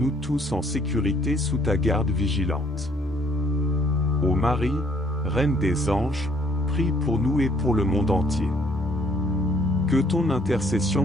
tous en sécurité sous ta garde vigilante. Ô Marie, Reine des anges, prie pour nous et pour le monde entier. Que ton intercession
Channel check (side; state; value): both; normal; correlation 0.63